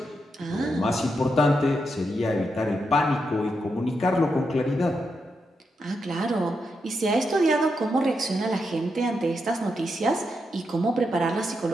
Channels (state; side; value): normal; both; correlation 0.84